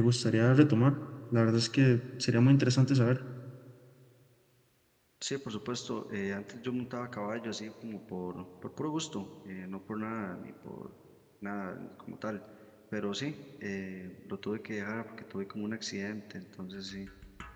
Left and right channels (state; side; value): identical; both; correlation 1.00